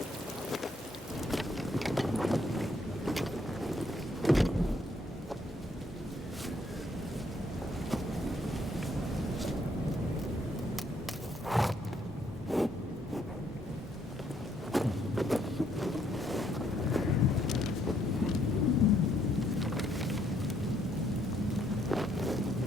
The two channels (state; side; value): normal; both; correlation 0.70